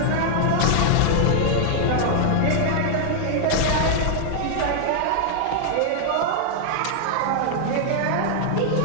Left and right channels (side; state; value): both; different; correlation -0.01